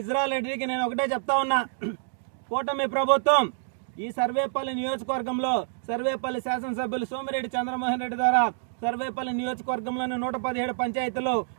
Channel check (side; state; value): left; silent; digital silence